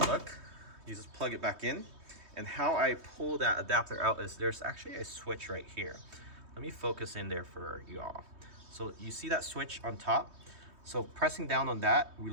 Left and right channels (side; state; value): left; late; 3.2 ms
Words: You just plug it back in, and how I pull that adapter out is there's actually a switch right here. Let me focus in there for y'all. So you see that switch on top? So pressing down on that